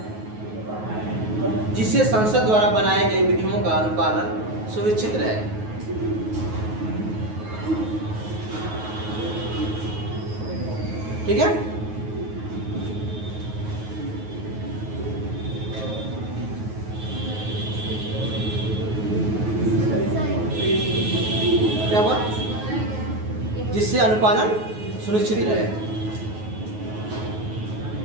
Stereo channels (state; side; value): late; left; 9.4 ms